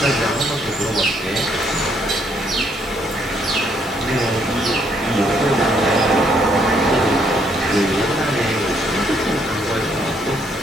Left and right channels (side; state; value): both; normal; correlation 0.70